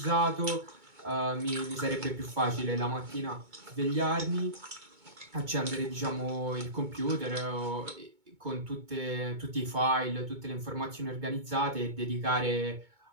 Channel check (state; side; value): late; left; 2.2 ms